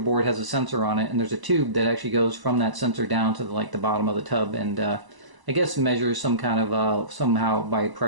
has a sensor on it, and there's a tube that actually goes from that sensor down to the bottom of the tub, and I guess measures some kind of somehow by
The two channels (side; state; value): left; late; 1.0 ms